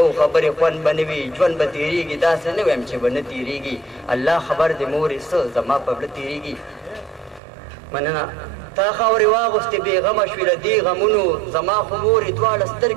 خبرې خوند به نه وي ژوند به تېرېږي داسې نه وایم چې به نه تېرېږي الله خبر دې مورې څه زما په زړه تېرېږي مننه تا خاورې واغوستې بېغمه شوې له دې غمونو زما خو مورې دواړه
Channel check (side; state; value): left; drops out; at 7.4 s